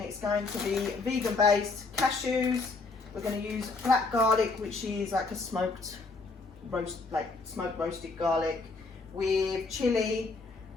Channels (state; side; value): quieter; right; 3.9 dB